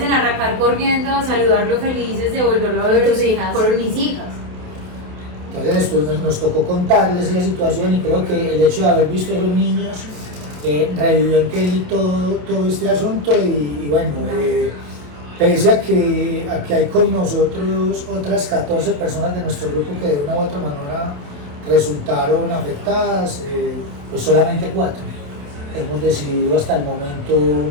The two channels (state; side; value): late; left; 28 ms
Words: en arrancar corriendo a saludarlo felices de volverlo a ver tus hijas. Fueron mis hijas. Entonces después nos tocó contarles esa situación, y creo que el hecho de haber visto a los niños revivió en Kelly todo este asunto, y bueno, pese a que hay con nosotros otras 14 personas de nuestro grupo que de una u otra manera resultaron afectadas, pues solamente 4 hemos decidido hasta el momento